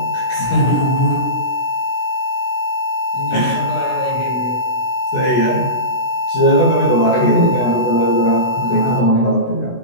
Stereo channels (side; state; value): right; late; 16 ms